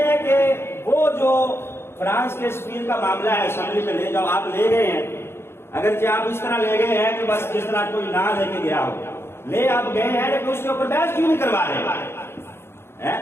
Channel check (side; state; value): right; late; 0.12 ms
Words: کہ وہ جو فرانس کے سفیر کا معاملہ ہے، اسمبلی میں لے جاؤ، آپ لے گئے ہیں، اگرچہ آپ اس طرح لے گئے ہیں کہ بس جس طرح کوئی نہ لے کے گیا ہو، لے آپ گئے ہیں، لیکن اس کے اوپر بحث کیوں نہیں کروا رہے؟